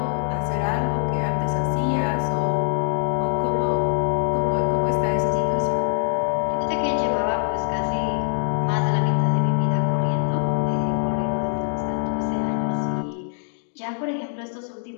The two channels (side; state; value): right; silent; digital silence